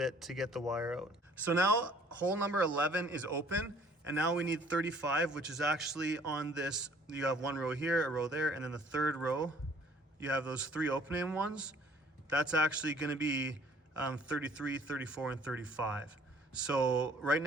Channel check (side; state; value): both; normal; correlation 0.56